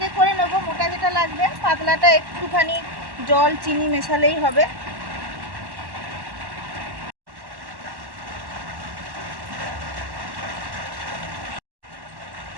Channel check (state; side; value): late; left; 1.1 ms